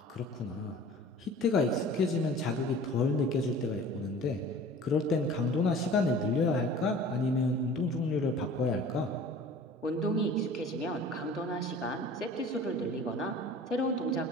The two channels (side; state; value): both; normal; correlation 0.44